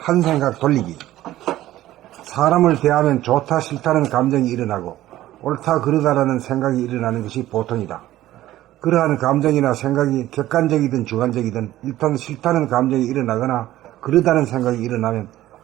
생각 돌리기. 사람을 대하면 좋다 싫다는 감정이 일어나고 옳다 그르다라는 생각이 일어나는 것이 보통이다. 그러한 감정이나 생각이 객관적이든 주관적이든 일단 싫다는 감정이 일어나거나 그르다는 생각이 일어나면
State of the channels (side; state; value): left; quieter; 14.6 dB